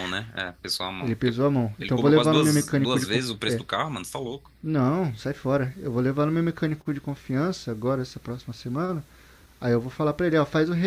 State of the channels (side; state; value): both; identical; correlation 1.00